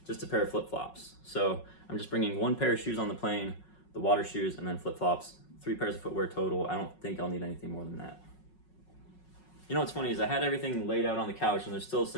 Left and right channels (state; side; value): late; right; 5.4 ms